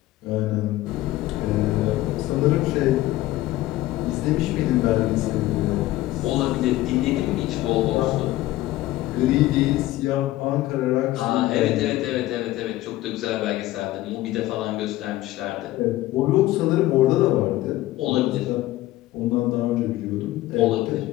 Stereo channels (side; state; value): right; quieter; 16.4 dB